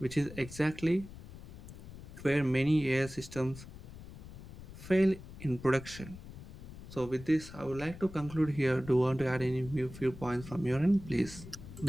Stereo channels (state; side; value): noise; left; rumble, 14 dB below the sound